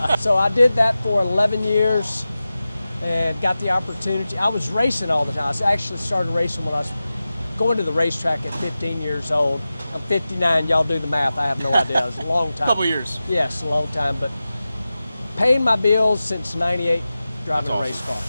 So I did that for 11 years and got the opportunity. I was racing all the time. I actually started racing when I was going to the racetrack at 15 years old. I'm 59, y'all do the math, I have no idea. It's a long time. Couple years. Yes, a long time, but paying my bills since 98, driving a race car.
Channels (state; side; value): inverted; both; correlation -0.95